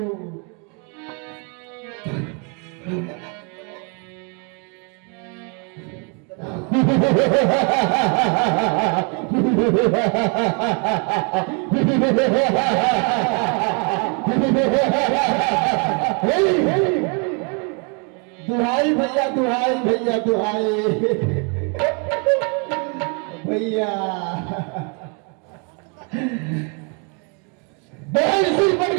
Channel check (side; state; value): left; quieter; 35.6 dB